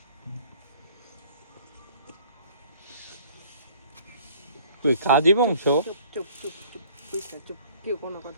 তুই কাজী বংশ চুপ কেউ কোনো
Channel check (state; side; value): inverted; both; correlation -0.55